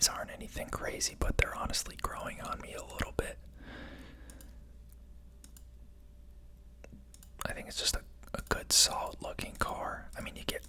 aren't anything crazy, but they're honestly growing on me a little bit. I think it's just a good, solid looking car. I mean, you get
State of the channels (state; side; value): identical; both; correlation 1.00